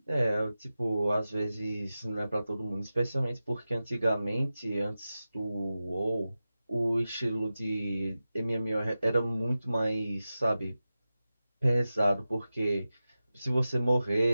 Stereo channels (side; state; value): both; inverted; correlation -0.94